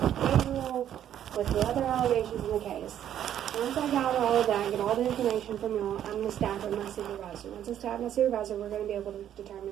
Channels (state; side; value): quieter; left; 10.5 dB